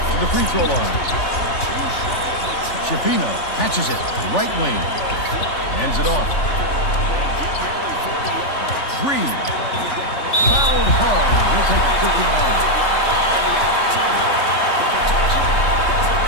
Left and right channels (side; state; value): right; late; 3.4 ms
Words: to the free throw line. Shapino catches it. Right wing. Hands it off. Green fouled hard. He'll take a quick line.